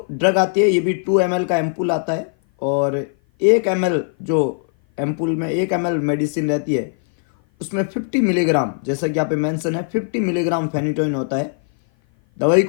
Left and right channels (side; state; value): right; silent; 56 dB below the other